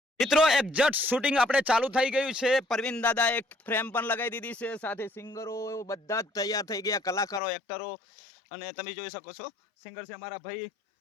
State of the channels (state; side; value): drops out; right; at 7.4 s